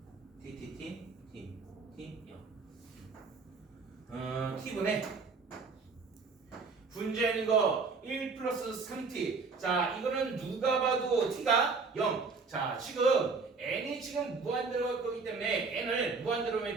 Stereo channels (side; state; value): left; quieter; 4.5 dB